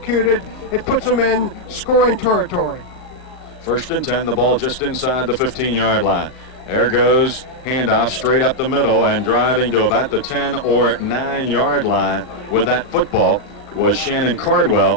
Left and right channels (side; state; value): right; late; 39 ms